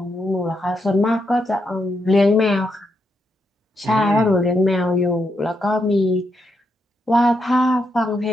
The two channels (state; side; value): normal; both; correlation 0.81